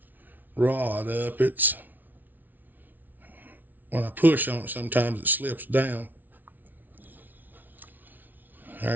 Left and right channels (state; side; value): late; left; 0.083 ms